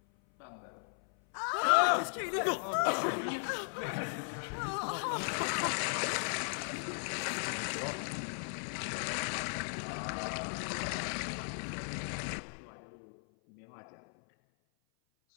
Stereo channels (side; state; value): right; silent; 54 dB below the other